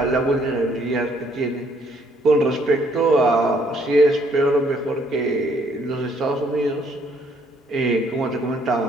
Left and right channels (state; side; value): normal; both; correlation 0.66